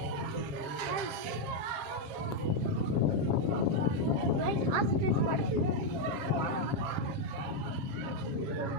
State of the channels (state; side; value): late; left; 7.3 ms